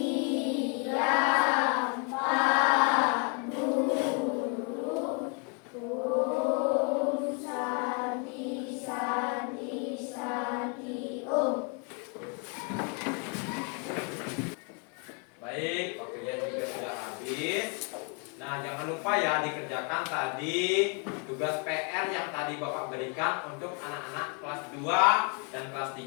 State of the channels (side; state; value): right; quieter; 35.5 dB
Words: Baik, waktunya juga sudah habis. Nah, jangan lupa ya dikerjakan tadi tugas PR yang tadi Bapak berikan untuk anak-anak kelas 2 dan kelas